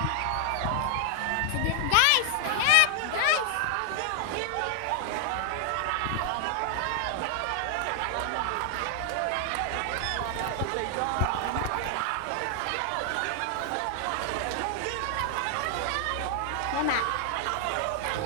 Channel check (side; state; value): both; different; correlation 0.00